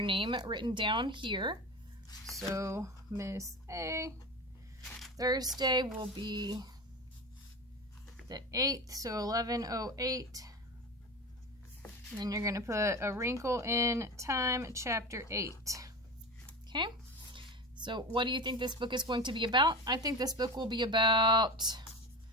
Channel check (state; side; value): normal; both; correlation 0.26